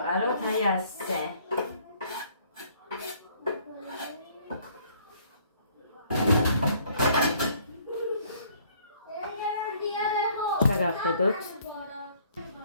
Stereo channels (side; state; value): both; inverted; correlation -0.61